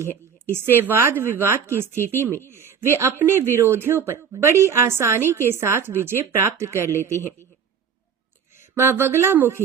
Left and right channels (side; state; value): left; quieter; 7.1 dB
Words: है। इससे वाद विवाद की स्थिति में वे अपने विरोधियों पर बड़ी आसानी के साथ विजय प्राप्त कर लेते हैं। मां